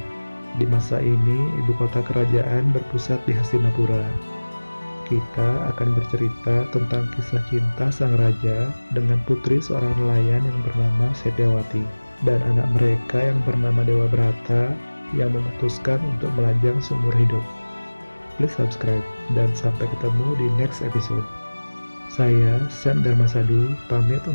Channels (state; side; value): inverted; both; correlation -1.00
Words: Di masa ini, ibu kota kerajaan berpusat di Hastinapura. Kita akan bercerita tentang kisah cinta sang raja dengan putri seorang nelayan yang bernama Setyawati dan anak mereka yang bernama Dewa Brata yang memutuskan untuk melajang seumur hidup. Please subscribe dan sampai ketemu di next episode. Saya Sam Dharmasadu pamit